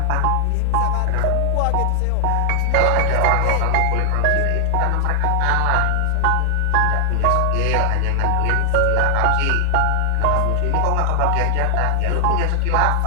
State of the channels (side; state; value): both; different; correlation 0.00